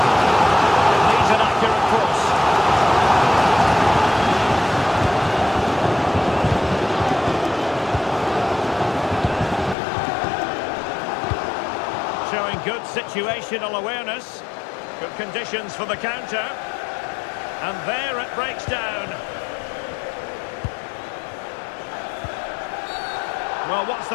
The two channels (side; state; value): right; drops out; at 9.8 s